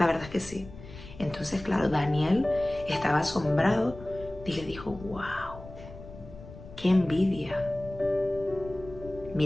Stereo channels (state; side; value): noise; left; rumble, 16 dB below the sound